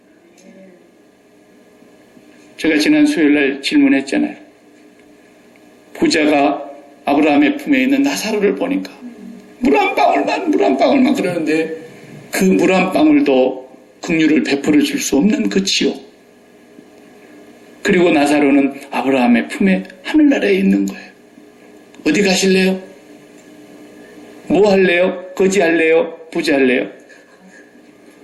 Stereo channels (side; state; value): both; identical; correlation 1.00